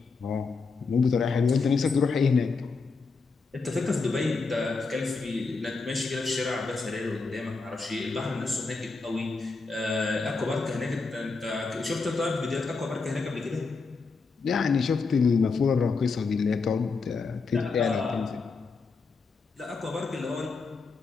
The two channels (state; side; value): quieter; right; 4.4 dB